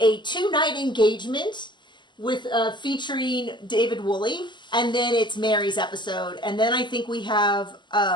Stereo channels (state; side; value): late; right; 0.22 ms